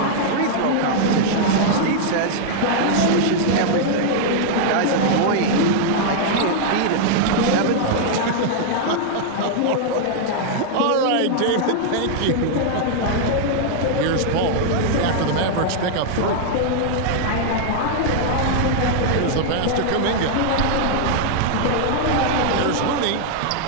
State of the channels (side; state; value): both; different; correlation -0.01